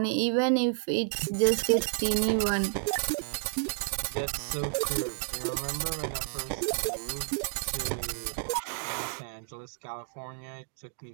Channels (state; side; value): silent; left; digital silence